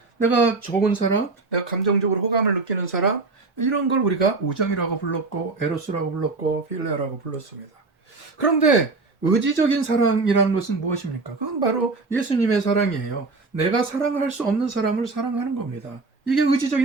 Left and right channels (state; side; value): quieter; left; 3.8 dB